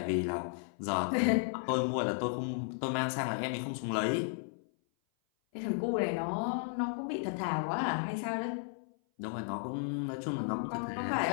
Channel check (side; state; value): right; silent; 55 dB below the other